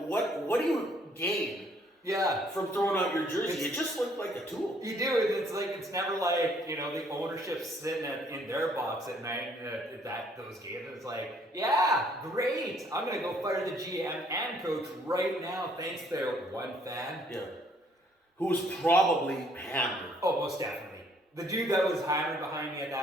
what do you gain? Yeah, from throwing out your jersey, it just looked like a tool. You do, and it's never like the ownership sitting in their box at night at those games. It's like, yeah, great. I'm gonna go fire the GM and coach right now. Thanks to one fan. Yeah, who was probably hammered. Oh, most definitely. The dude that was hammered behind me at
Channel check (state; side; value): normal; both; correlation 0.64